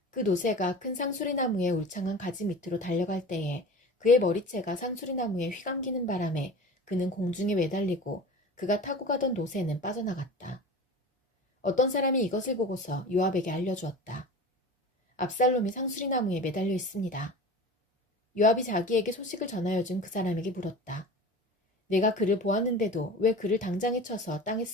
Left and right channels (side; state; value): both; normal; correlation 0.36